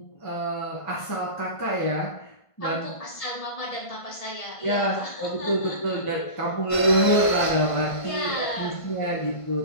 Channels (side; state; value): right; late; 1.5 ms